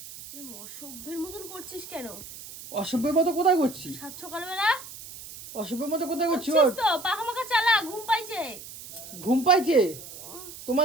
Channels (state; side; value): noise; right; hiss, 14 dB below the sound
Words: অসভ্যের মতন করছিস কেন? অসভ্যের মতো কোথায় করছি? সাত সকালবেলা অসভ্যের মতো কোথায় করছি? করছিস ওট। তো পাখা মাখা চালা, ঘুম পাইছে। ঘুম পাইছে?